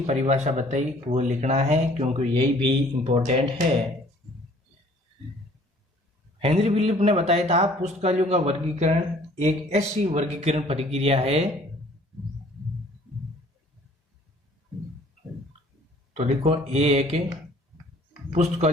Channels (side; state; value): both; normal; correlation 0.55